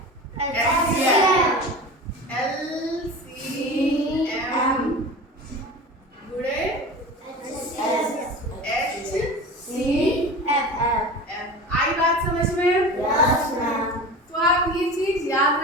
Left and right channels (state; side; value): normal; both; correlation 0.33